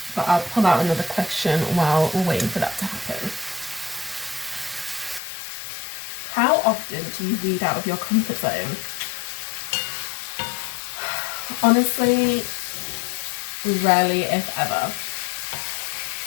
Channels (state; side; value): drops out; right; at 5.2 s